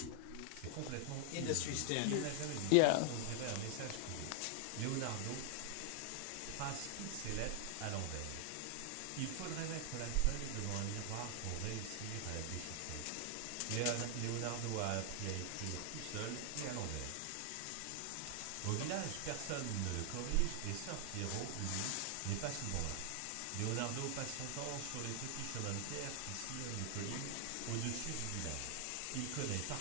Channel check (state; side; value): different; both; correlation 0.00